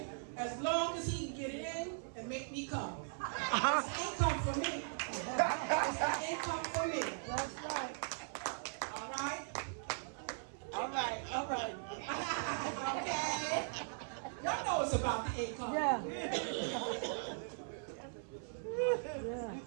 As long as he can get it in and make me come. It's income for me. It's an income for me. That's right. All right? All right. All right. Okay? Y'all know it's about the income. Yeah.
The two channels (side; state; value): left; silent; 52 dB below the other